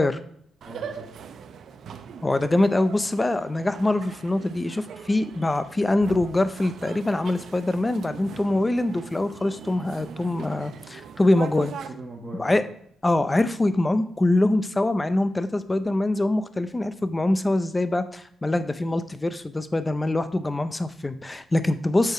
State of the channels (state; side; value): normal; both; correlation 0.96